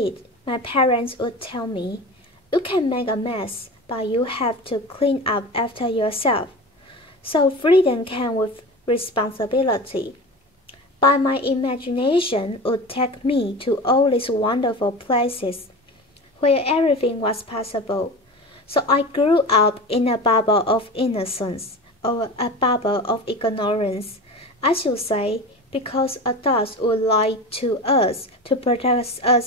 my parents would tell me, "You can make a mess, but you have to clean up after yourself." So freedom came with responsibility. But my imagination would take me to all these wonderful places where everything was possible. So I grew up in a bubble of innocence, or a bubble of ignorance, I should say, because adults would lie to us to protect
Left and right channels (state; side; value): normal; both; correlation 0.31